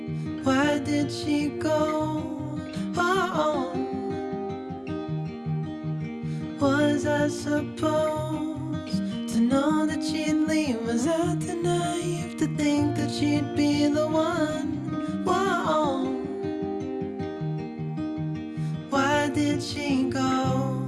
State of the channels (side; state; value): both; identical; correlation 1.00